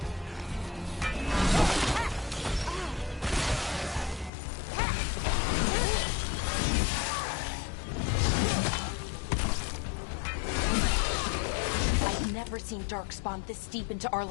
Seen Darkspawn this deep into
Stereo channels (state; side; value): drops out; right; at 4.3 s